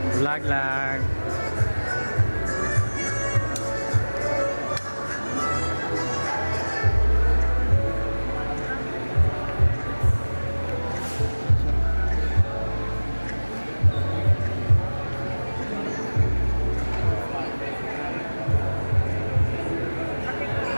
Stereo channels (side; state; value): both; inverted; correlation -1.00